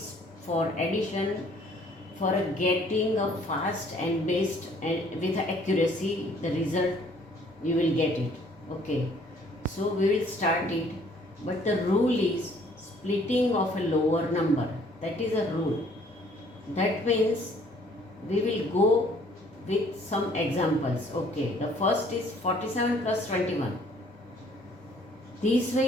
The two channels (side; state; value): both; normal; correlation 0.59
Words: for addition for getting a fast and best and with accuracy the result you will get it. Okay, so we will start it, but the rule is splitting of a lower number. That is a rule. That means we will go with some examples. Okay, the first is 47 plus 21. This